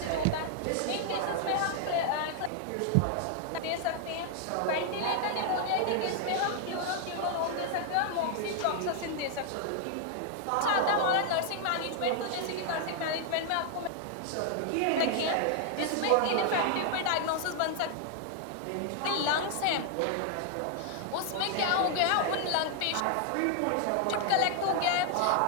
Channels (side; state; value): both; different; correlation 0.00